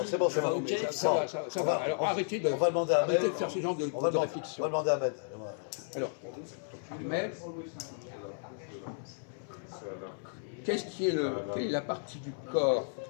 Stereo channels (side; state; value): right; silent; 56 dB below the other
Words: c'est bon, c'est Tu vas bon. au KFC. Ça va. Alors arrêtez de, On va demander à Ahmed. arrêtez de faire ce genre de On va réflexion. demander à Ahmed. Alors, Ahmed, quelle est la partie du corps